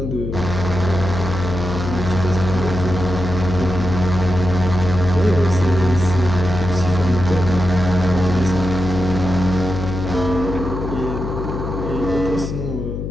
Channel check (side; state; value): left; noise; hum, 5 dB below the sound